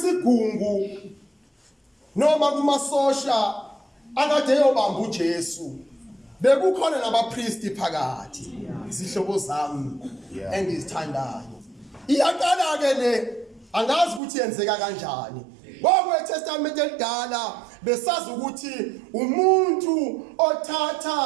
noma kumasosha akade eyobamba uJesu bekukhona nabapristi phakathi. Zihlobo zami engizithandayo, iyaqala ke le, angazi ukuthi yenzeka kanjani. KweTestament elidala besazi ukuthi umuntu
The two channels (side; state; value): left; drops out; at 14.2 s